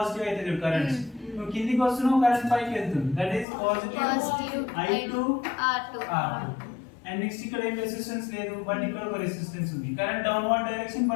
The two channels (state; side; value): drops out; right; at 3.5 s